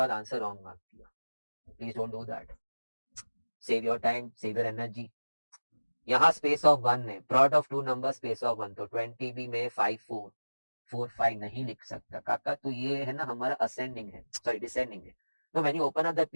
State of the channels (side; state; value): both; inverted; correlation -1.00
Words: आंसर रॉन्ग मार्क किया. Please don't do that. Save your time, save your energy. यहाँ space of 1 है, product of two number space of 1, तो 20 भी में 5 4. 4 5 नहीं लिख सकता काका, तो ये है ना हमारा असेंडिंग है, सॉरी डिसेंडिंग है। तो when you open up the